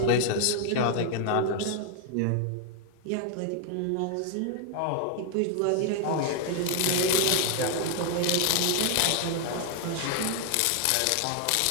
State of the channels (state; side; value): different; both; correlation 0.00